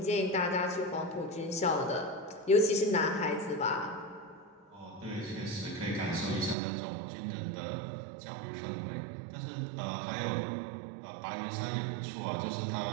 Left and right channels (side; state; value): left; drops out; at 6.6 s